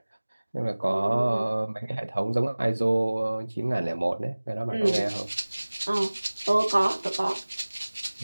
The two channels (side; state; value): both; inverted; correlation -1.00